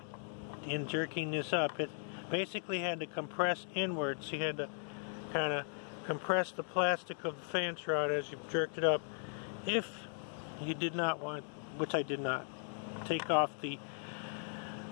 in jerking this up. It basically had to compress inwards. You had to kind of compress the plastic of the fan shroud as you jerked it up. If you did not want, which I did not, take off the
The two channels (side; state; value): right; silent; 53 dB below the other